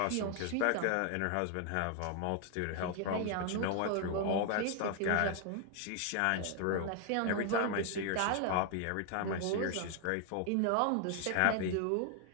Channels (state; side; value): different; both; correlation 0.00